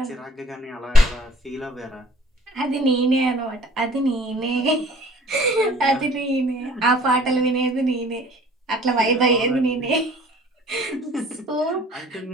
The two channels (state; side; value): normal; both; correlation 0.51